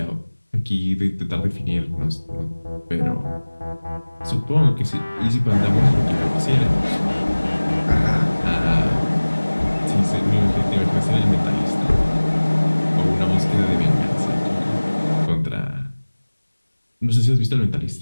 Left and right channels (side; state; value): both; inverted; correlation -1.00